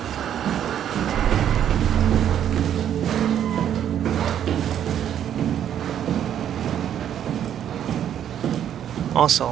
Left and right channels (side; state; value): left; quieter; 9.9 dB